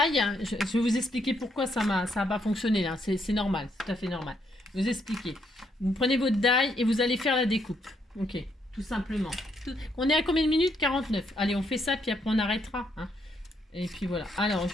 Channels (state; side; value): normal; both; correlation 0.74